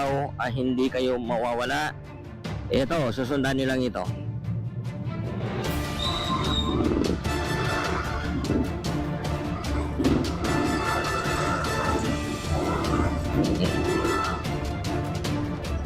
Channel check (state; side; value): identical; both; correlation 1.00